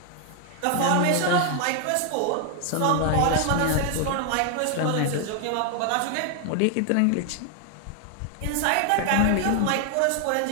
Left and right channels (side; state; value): both; different; correlation 0.00